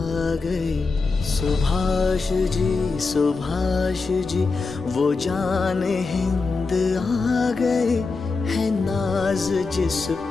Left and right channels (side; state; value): right; quieter; 4.1 dB